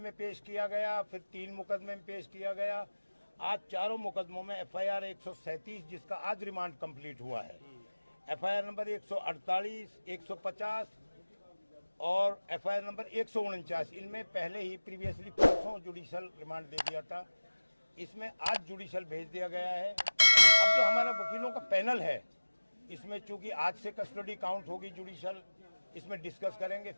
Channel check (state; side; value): inverted; both; correlation -1.00